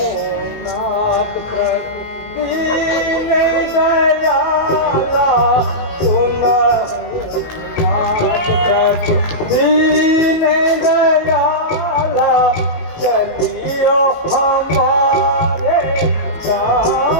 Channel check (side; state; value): right; late; 18 ms